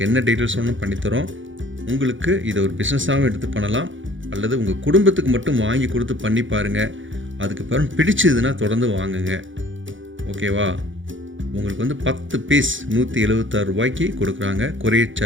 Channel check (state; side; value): late; left; 0.56 ms